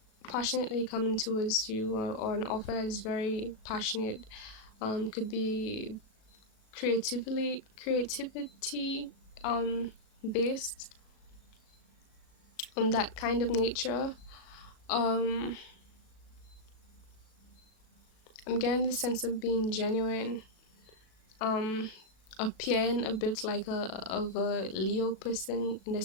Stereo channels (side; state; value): right; late; 37 ms